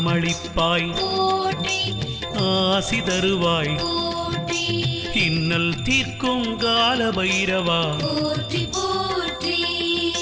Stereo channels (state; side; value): identical; both; correlation 1.00